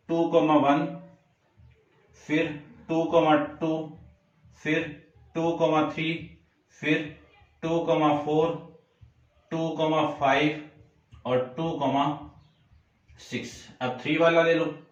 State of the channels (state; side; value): identical; both; correlation 1.00